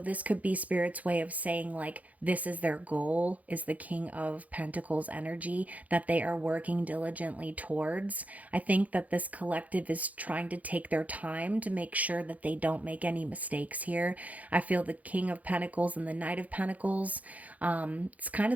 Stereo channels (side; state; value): left; late; 0.074 ms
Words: could be Spirit's way of saying, like, this is their goal, is the King of Pentacles energy that they are working diligently towards. I think that this collective is trying to take their time to make sure that they don't make any mistakes here. I feel the King of Pentacles and the Knight of Pentacles, it's kind